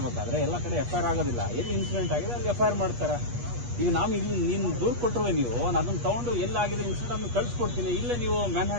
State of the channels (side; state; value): left; late; 8.3 ms